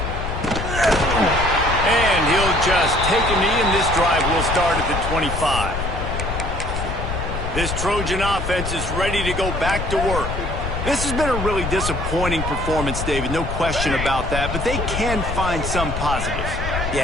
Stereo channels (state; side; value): noise; left; rumble, 4 dB below the sound